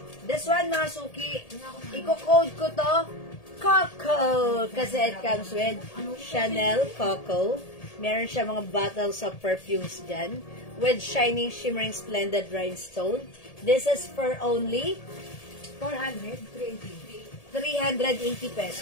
This one, mga suki, i-code ko to, Coco, kasi it comes with Chanel Coco. Meron siya mga bottles of perfumes dyan with shining, shimmering, splendid rhinestone. This is for only 400, 380. 380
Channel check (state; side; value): late; right; 1.8 ms